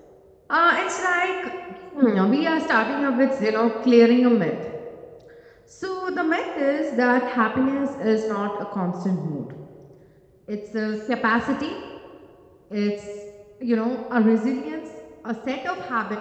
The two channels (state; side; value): identical; both; correlation 1.00